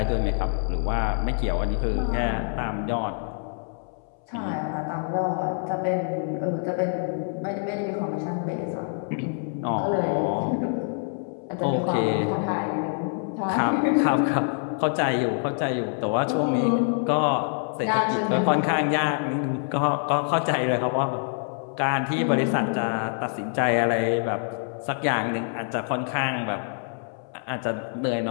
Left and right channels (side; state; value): right; silent; 61 dB below the other